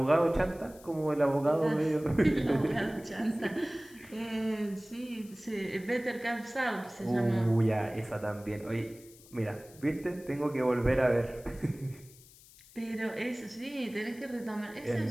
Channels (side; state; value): left; noise; hiss, 23 dB below the sound